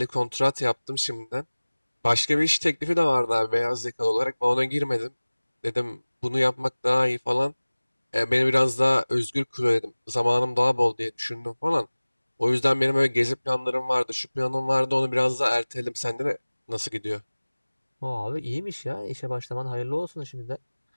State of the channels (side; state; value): both; inverted; correlation -1.00